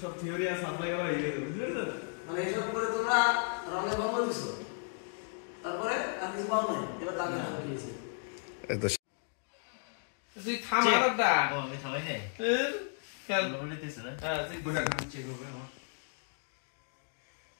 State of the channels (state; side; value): silent; right; 55 dB below the other